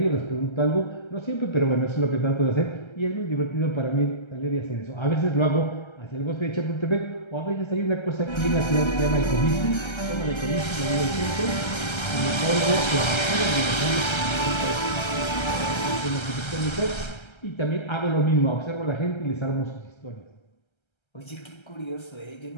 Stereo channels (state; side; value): late; right; 1.3 ms